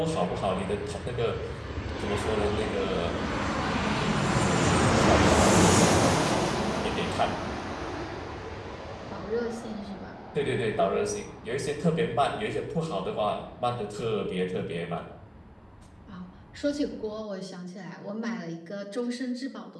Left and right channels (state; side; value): identical; both; correlation 1.00